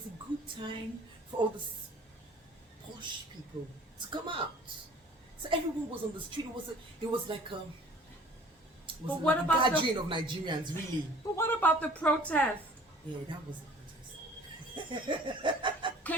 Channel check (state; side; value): normal; both; correlation 0.50